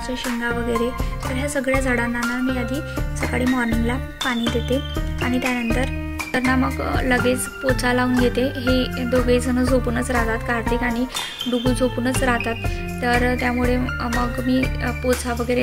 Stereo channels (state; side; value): identical; both; correlation 1.00